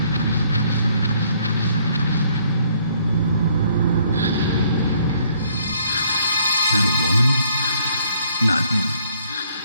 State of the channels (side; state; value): both; inverted; correlation -0.64